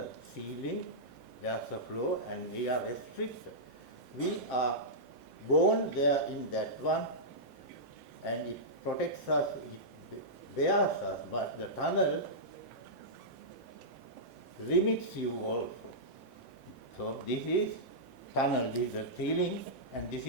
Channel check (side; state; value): both; normal; correlation -0.13